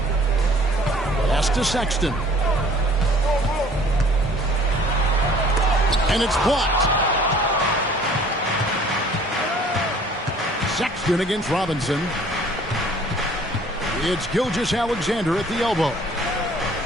Pass to Sexton. And it's blocked. Sexton against Robinson. It's Gilgeous-Alexander at the elbow.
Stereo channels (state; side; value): normal; both; correlation 0.53